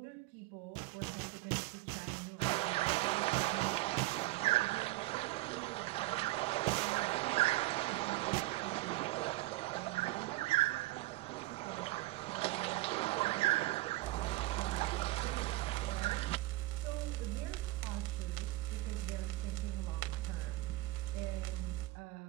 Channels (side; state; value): left; quieter; 19.3 dB